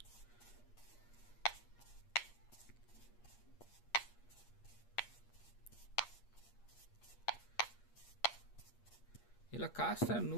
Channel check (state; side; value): late; right; 8.5 ms